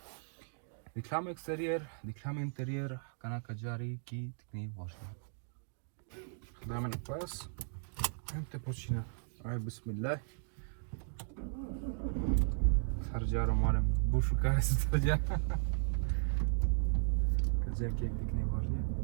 Diklamo exterior, diklamo interior, kanaka jari ki tikni važni. Dajme na pas, te počina, aj bismillah. Sarđaro moram, bu šukare su sarđa. Kazerki tikni važni.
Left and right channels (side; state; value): left; silent; digital silence